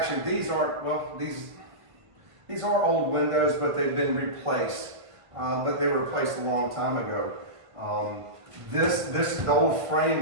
these aren't, well, these are old windows, but they've been replaced. But they were replaced a long time ago. The old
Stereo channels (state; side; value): late; left; 1.5 ms